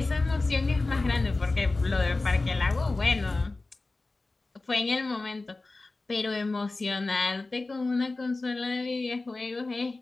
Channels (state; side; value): quieter; right; 3.3 dB